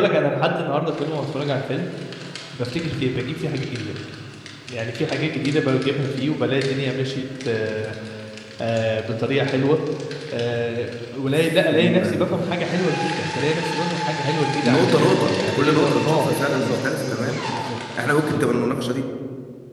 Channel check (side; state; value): both; identical; correlation 1.00